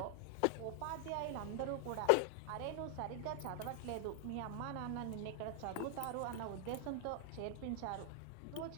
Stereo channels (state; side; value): different; both; correlation 0.00